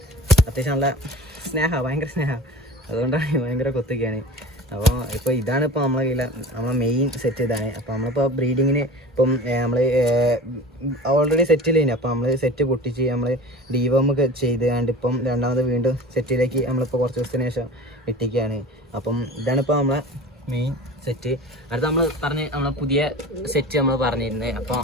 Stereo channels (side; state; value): both; normal; correlation 0.36